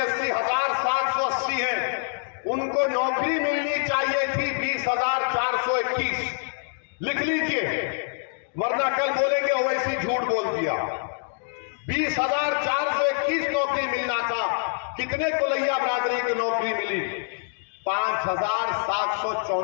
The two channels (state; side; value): silent; right; digital silence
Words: है। उनको नौकरी मिलनी चाहिए थी 20,421। लिख लीजिए, वरना कल बोलेंगे ओवैसी झूठ बोल दिया। 20,421 नौकरी मिलना था। कितने कुलैया बरादरी की नौकरी मिली?